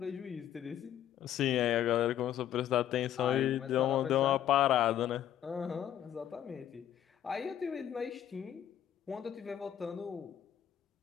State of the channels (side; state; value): right; quieter; 10.8 dB